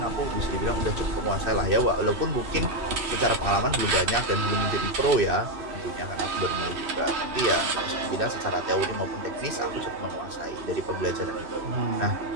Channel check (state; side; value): late; left; 2.6 ms